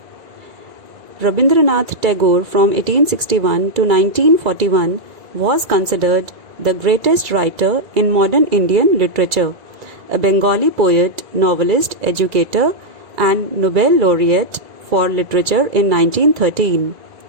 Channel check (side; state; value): left; late; 2.0 ms